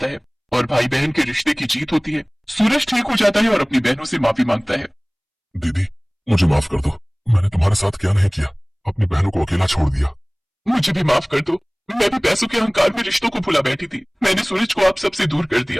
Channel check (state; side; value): identical; both; correlation 1.00